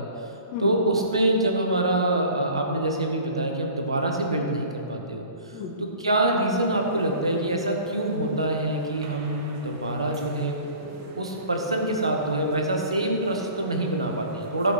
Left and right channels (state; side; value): inverted; both; correlation -0.46